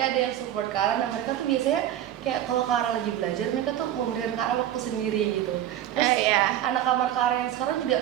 ada yang support Kara, dan mereka tuh biasanya kayak kalau Kara lagi belajar, mereka tuh memberikan Kara waktu sendiri gitu. Terus anak kamar Kara yang sekarang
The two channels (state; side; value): quieter; left; 11.8 dB